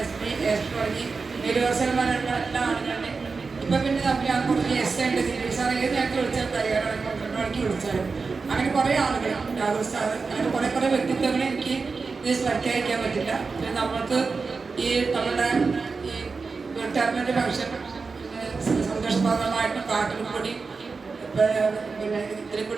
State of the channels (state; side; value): quieter; left; 4.5 dB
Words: SP തുടങ്ങി യൂണിവേഴ്സൽമാരുള്ള എല്ലാ ആളുകളുടെ ഇപ്പം പിന്നെ നമ്മൾ കുറച്ച് ഉണ്ട് സാർ ഏത് നേരത്തെ വിളിച്ചാൽ തയ്യാറാണ് 12 മണിക്ക് വിളിച്ചാലും അങ്ങനെ കുറേ ആളുകൾ രാഹുൽ സാർ അങ്ങനെ കുറേ വ്യക്തിത്വങ്ങളെ എനിക്ക് ഇത് പ്രഖ്യാപിക്കാൻ പറ്റില്ല. പിന്നെ നമ്മൾക്ക് ഈ നമ്മുടെ ഈ റിട്ടയർമെൻറ്റ് ഫംഗ്ഷൻ സന്തോഷപ്രദമായിട്ടും പാട്ടിൽ കൂടി പിന്നെ ഇതിൽ